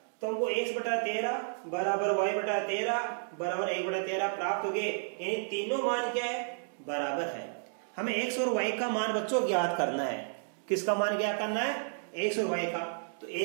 तो हमको x बटा 13 बराबर y बटा 13 बराबर 1/13 प्राप्त हो गए। यानी तीनों मान क्या है, बराबर है। हमें x और y का मान बच्चों ज्ञात करना है। किसका मान ज्ञात करना है, x और y का। तो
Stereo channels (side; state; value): left; silent; digital silence